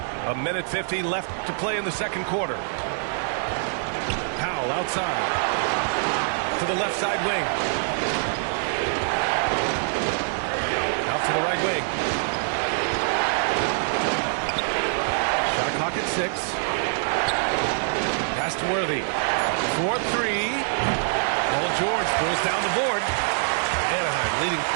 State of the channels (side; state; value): left; silent; 57 dB below the other